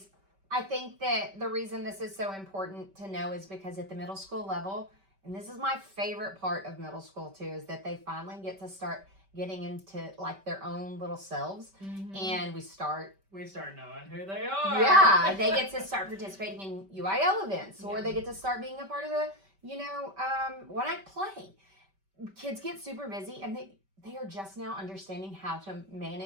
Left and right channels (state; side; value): late; left; 5.2 ms